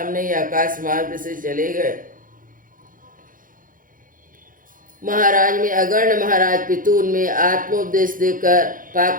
ही आकाश मार्ग से चले गए। महाराज में अगर्ण महाराज पृथु उनमें आत्मोपदेश देकर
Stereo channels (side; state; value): left; late; 0.40 ms